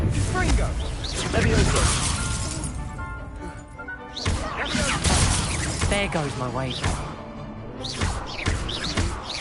Fringo. Levioso. There goes my wager.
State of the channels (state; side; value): identical; both; correlation 1.00